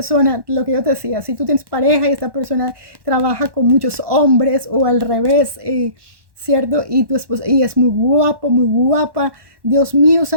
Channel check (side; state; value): left; late; 1.1 ms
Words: lo que yo te decía, si tú tienes pareja y esta persona trabaja con muchos hombres o al revés, ¿cierto? Y tu esposa, y es muy guapo, muy guapa. Dios mío